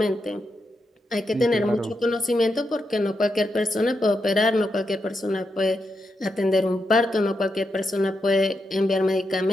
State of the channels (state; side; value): normal; both; correlation 0.85